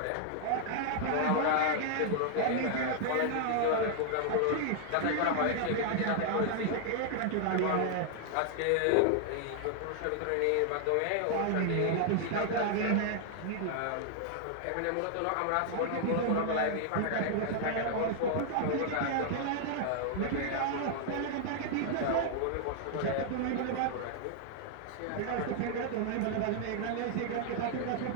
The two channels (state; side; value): different; both; correlation 0.00